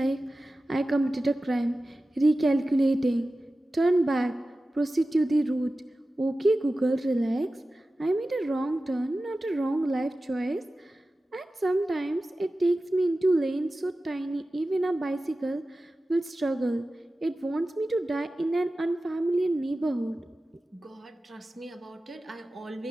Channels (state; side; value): normal; both; correlation 0.95